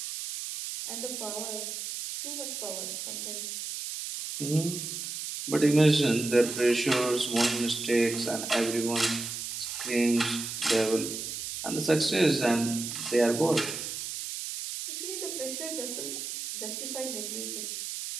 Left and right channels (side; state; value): right; noise; hiss, 6 dB below the sound